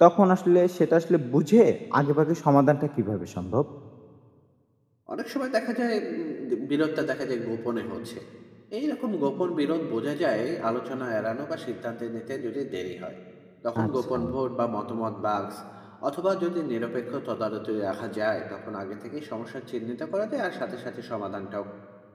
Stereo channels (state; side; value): identical; both; correlation 1.00